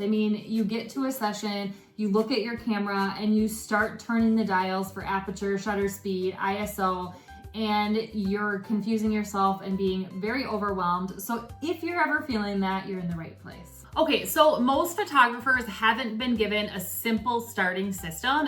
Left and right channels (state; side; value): identical; both; correlation 1.00